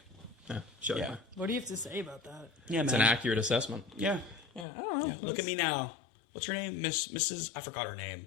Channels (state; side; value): drops out; right; at 4.7 s